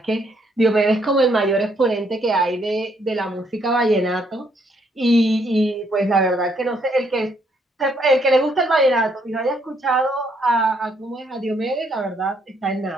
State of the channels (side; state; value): both; normal; correlation 0.71